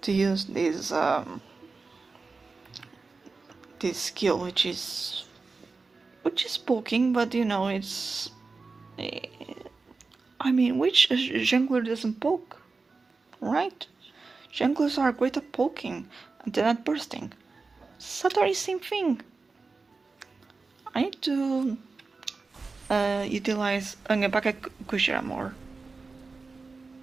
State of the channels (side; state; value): left; quieter; 4.1 dB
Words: to use this skill, which is poking, but you know it's. I mean, which jungler doesn't poke, right? Junglers are great at poking and then at bursting. Satori, same thing. I need to utilize Angepaka Kushira more.